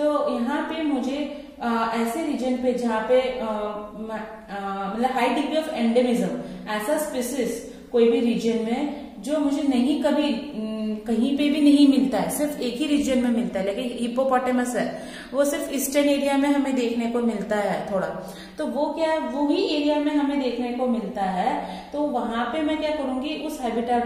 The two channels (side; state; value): both; identical; correlation 1.00